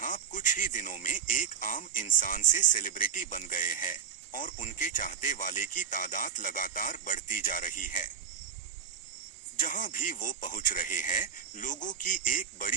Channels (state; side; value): quieter; left; 7.7 dB